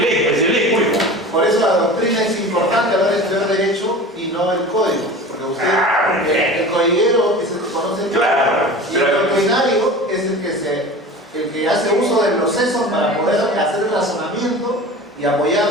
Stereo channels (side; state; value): both; normal; correlation 0.36